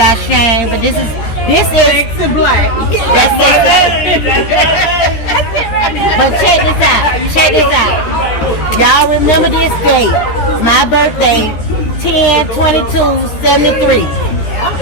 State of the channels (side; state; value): right; late; 14 ms